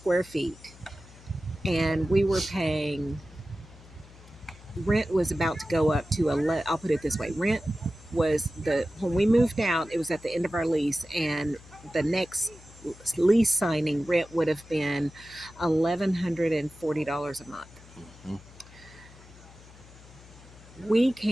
feet. And we were paying, rent was about to go up to, I'll put it this way, rent was when we moved out, it was at the end of our lease, and the next lease signing rent would have been $1,140 a month. Mhm. We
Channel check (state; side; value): noise; left; hum, 21 dB below the sound